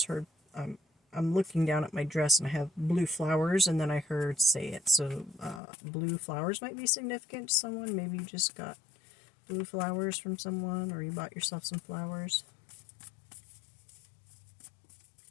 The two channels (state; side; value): drops out; right; at 5.6 s